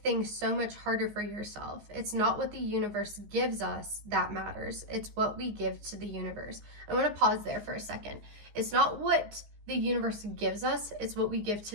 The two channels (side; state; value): left; late; 14 ms